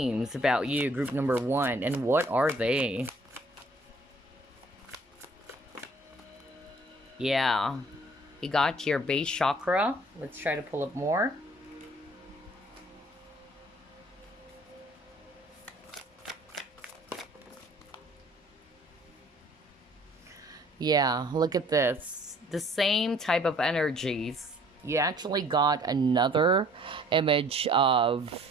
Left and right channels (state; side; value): normal; both; correlation 0.56